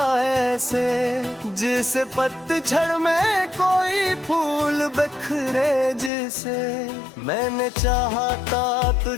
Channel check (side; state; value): right; drops out; at 6.1 s